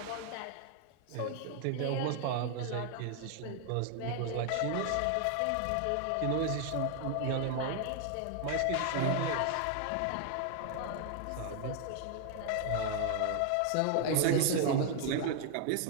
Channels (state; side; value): different; both; correlation 0.00